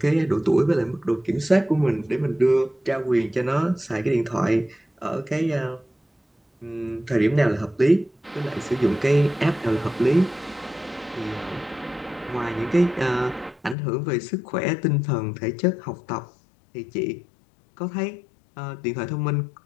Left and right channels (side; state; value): right; drops out; at 13.8 s